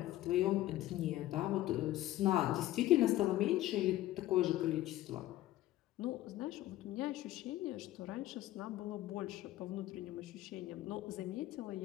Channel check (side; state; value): right; quieter; 15.1 dB